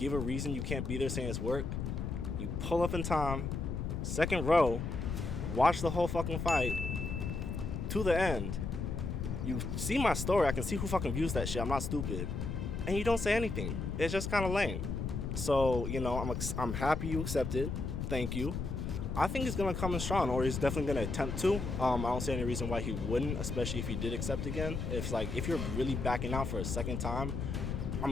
a reason you can't be there saying it's work. You pull up in time, second row, watch the whole fucking fight to the end. You see my story. I can see who fucking views that shit. I'm not stupid, and you don't say anything. It's just kind of lame. So, I'm happy you accepted. Thank you. I think he's going to come in strong, or he's definitely going to attempt to. I don't see any reason why he wouldn't, especially if he did accept again. If you're really backing out for a second time,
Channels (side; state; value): left; noise; rumble, 3 dB below the sound